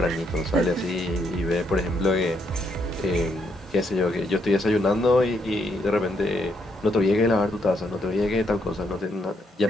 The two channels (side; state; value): both; normal; correlation 0.75